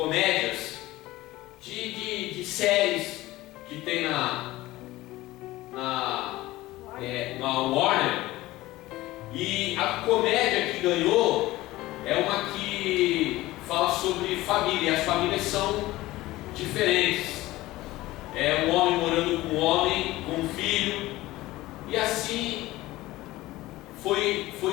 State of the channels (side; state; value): right; quieter; 17.8 dB